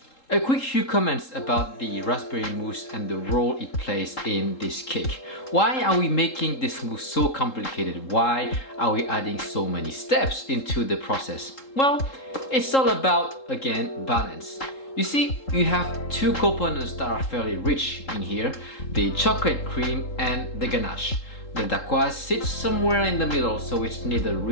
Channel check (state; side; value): late; right; 3.8 ms